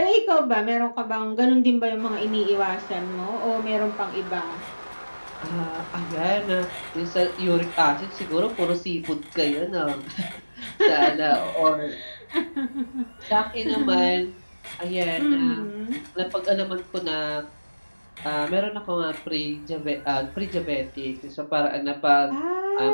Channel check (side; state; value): both; inverted; correlation -1.00